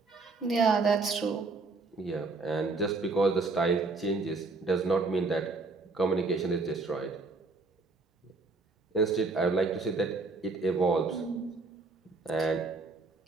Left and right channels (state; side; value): quieter; left; 3.7 dB